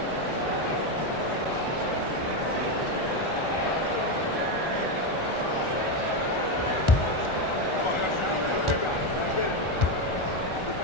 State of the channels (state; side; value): late; right; 1.4 ms